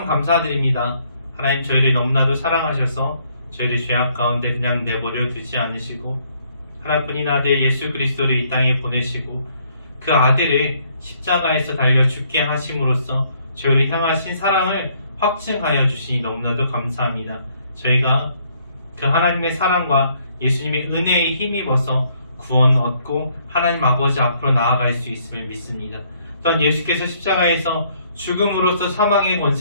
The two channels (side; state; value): both; inverted; correlation -0.67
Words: 감사드립니다. 하나님 저희를 너무나도 사랑하셔서 저희를 죄악 가운데 그냥 내버려 두지 않으시고 하나뿐인 아들 예수 그리스도를 이 땅에 보내시고 그 아들을 십자가에서 달려 죽게 하심으로써 저희를 향하신 사랑을 확증하여 주시니 너무나도 감사합니다. 저희가 그 하나님의 사랑과 예수님의 은혜에 힘입어서 구원 얻고 하나님 아버지 앞으로 나아갈 수 있음을 믿습니다. 또한 예수께서 십자가에서 죽음으로써 사망의